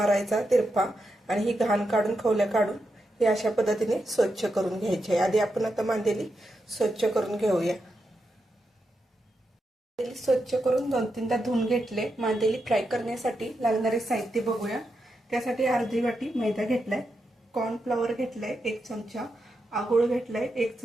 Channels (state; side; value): normal; both; correlation 0.86